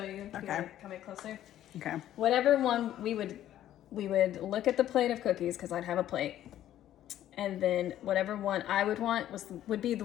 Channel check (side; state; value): right; quieter; 12.2 dB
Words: you. Okay. Here, come in closer. Okay. Whatever one we would look at the plate of cookies because I'd have a plate, and then whatever one I would want would be the